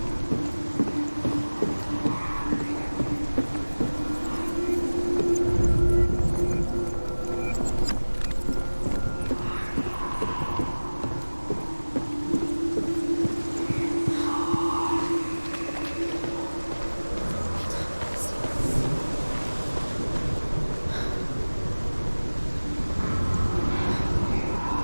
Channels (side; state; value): both; inverted; correlation -1.00